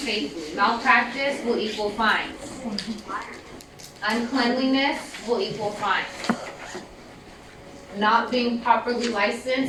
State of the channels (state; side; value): identical; both; correlation 1.00